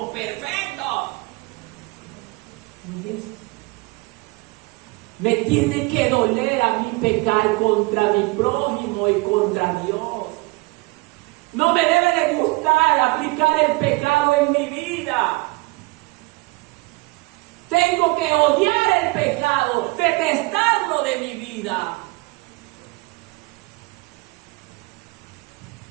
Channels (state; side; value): quieter; left; 24.5 dB